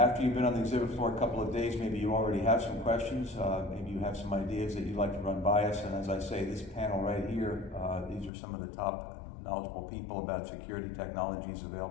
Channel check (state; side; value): drops out; right; at 8.3 s